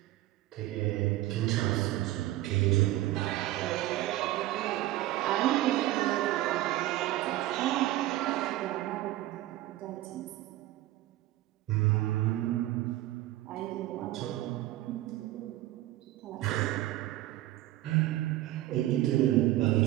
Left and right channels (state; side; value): quieter; left; 15.9 dB